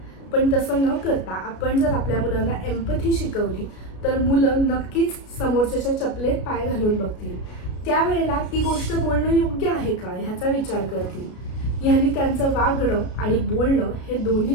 पण तसं न करता आपण जर आपल्या मुलांना एम्पथी शिकवली तर मुलं नक्कीच समोरच्याच्या चपलेत पाय घालून बघतील. त्यावेळेला ती गोष्ट बोलणं योग्य आहे का ह्याचा विचार करतील. ह्यानी त्यांचं वागणं आणि बोलणं हे दोन्ही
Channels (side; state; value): right; late; 33 ms